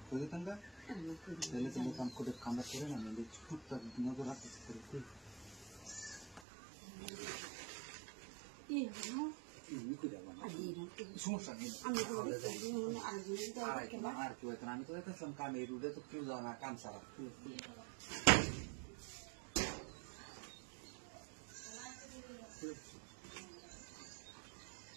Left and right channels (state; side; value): drops out; left; at 6.4 s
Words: করে তাঙ্গা তাহলে তুমি কাম করে কামটা করে না আমি টুকটাক নজর রাখতেছি করে কি হলো এমনি করে যাবো না সমস্যা নেই আর কেউ এখন আমি তো দেখতেছিলাম কামে রুডে তো কেউ যাও না কাম সারা